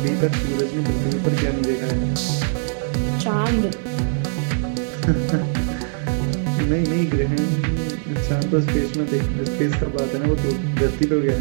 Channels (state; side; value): silent; left; 65 dB below the other